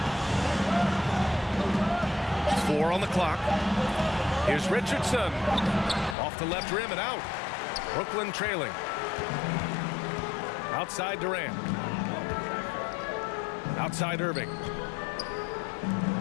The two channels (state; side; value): drops out; right; at 6.2 s